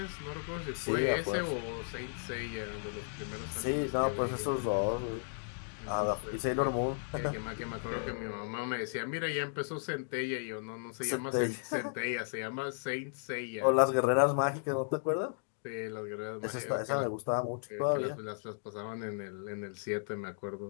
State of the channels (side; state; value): right; silent; digital silence